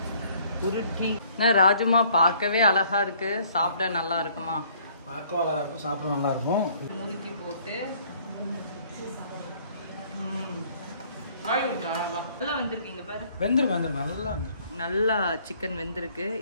உருட்டி. ராஜுமா பார்க்கவே அழகா இருக்கு, சாப்பிட நல்லா இருக்குமா? பார்க்க அழகா இருக்கும், சாப்பிட நல்லா இருக்கும். முறுக்கி போட்டு நல்லா வந்திருக்கீங்க பாரு. வெந்திருக்கு நல்லா நல்லா சிக்கன் வெந்திருக்கு.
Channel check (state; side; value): inverted; both; correlation -0.60